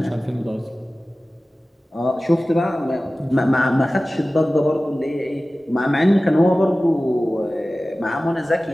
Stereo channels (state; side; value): normal; both; correlation 0.96